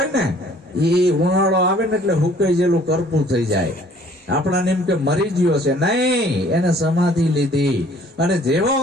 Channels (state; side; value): normal; both; correlation 0.56